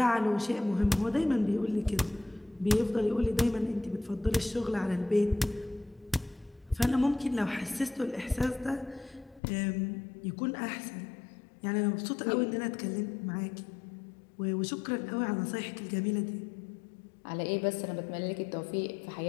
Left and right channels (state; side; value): drops out; right; at 9.4 s